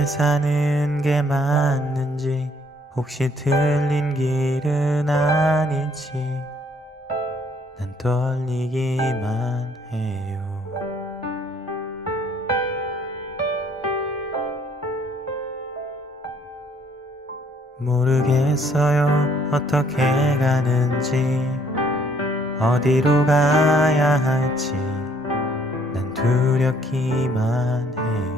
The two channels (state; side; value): normal; both; correlation 0.64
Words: 사는 게 맞는지 혹시 틀린 길은 아닌지 난 떨리기만 해요. 모르겠어요 어떻게 가는지 어디로 가야 할지 난 두렵기만